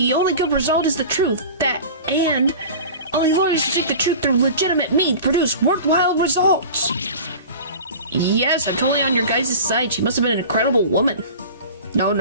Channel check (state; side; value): inverted; both; correlation -0.37